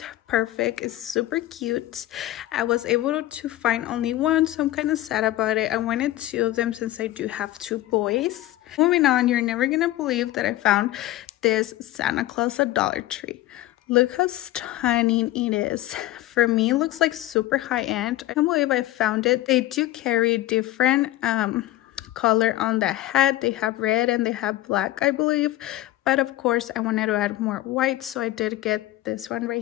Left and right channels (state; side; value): quieter; right; 15.5 dB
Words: perfect. It's super cute. I was able to find only one, so I'm kind of sad about it. I wanted 2 of them since I do have 2 boys. Moving on, you're never gonna believe that I found this Santa Claus at Dollar Tree. Look how stunning it is. For me, it looks like super high-end. I can't believe I found it. They do carry different color on the hat. They have red and they have black, I believe. But of course, I wanted to add more white, so I did get this one